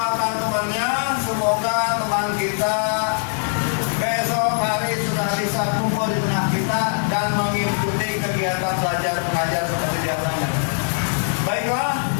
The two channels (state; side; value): silent; right; digital silence